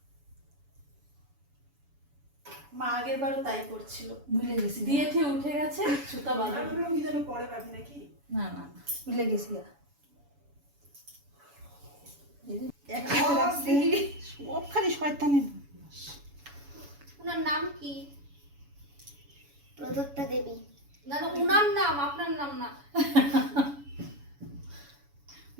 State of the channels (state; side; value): late; left; 7.0 ms